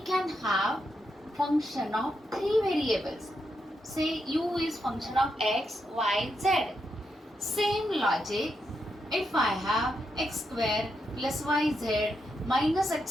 can have function of three variables. Say u is function of x, y, z. Same logic, if I have x square plus yz minus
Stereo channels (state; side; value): normal; both; correlation 0.83